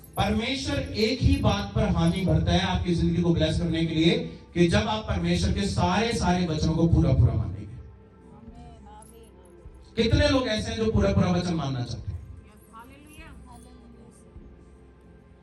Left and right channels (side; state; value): both; identical; correlation 1.00